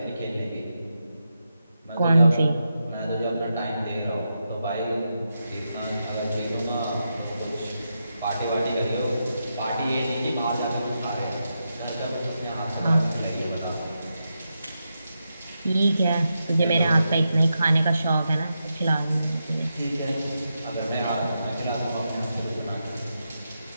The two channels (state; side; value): inverted; both; correlation -0.86